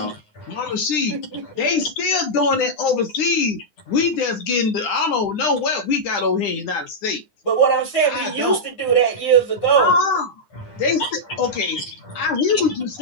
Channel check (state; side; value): late; right; 9.9 ms